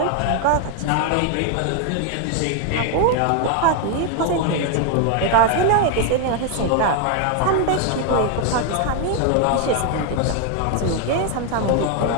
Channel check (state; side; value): different; both; correlation 0.01